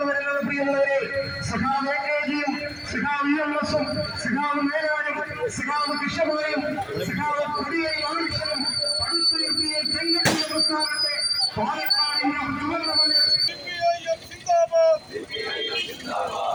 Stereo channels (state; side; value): identical; both; correlation 1.00